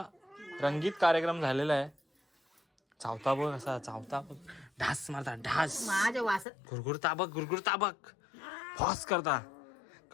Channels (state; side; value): drops out; right; at 6.5 s